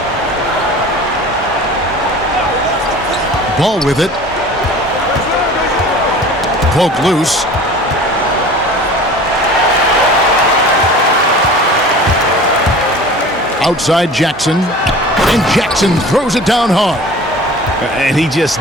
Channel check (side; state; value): both; normal; correlation 0.41